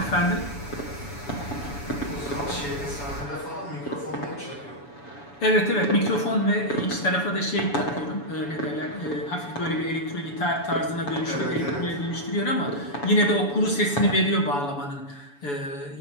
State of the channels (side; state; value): right; late; 7.0 ms